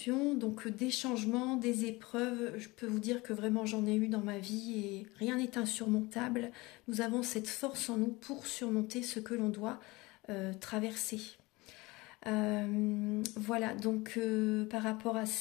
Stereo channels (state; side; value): quieter; right; 22.6 dB